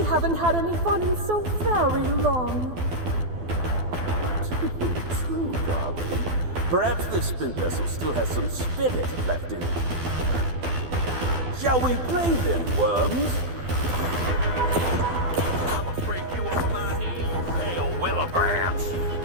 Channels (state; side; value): late; left; 12 ms